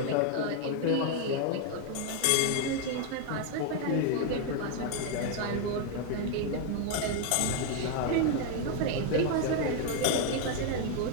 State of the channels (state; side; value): different; both; correlation 0.01